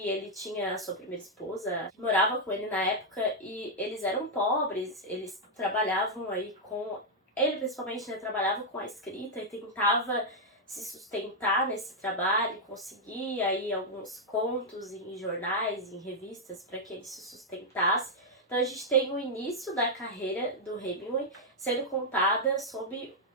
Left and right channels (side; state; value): both; normal; correlation -0.02